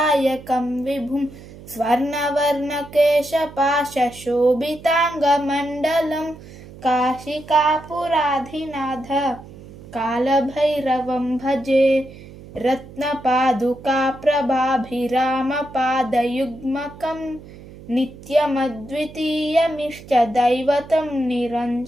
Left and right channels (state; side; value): noise; right; hum, 18 dB below the sound